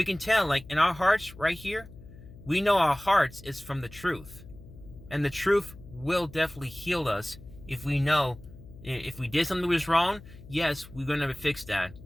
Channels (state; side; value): noise; left; hum, 18 dB below the sound